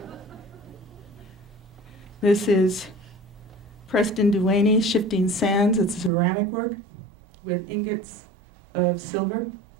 This is Preston Duaney, Shifting Sands. It's ceramic work with ingots of silver.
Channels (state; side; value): drops out; left; at 6.1 s